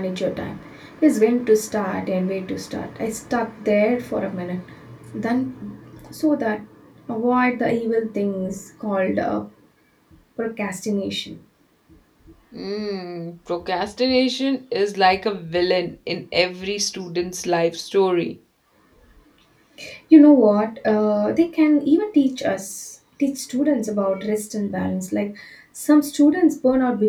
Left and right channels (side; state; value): both; identical; correlation 1.00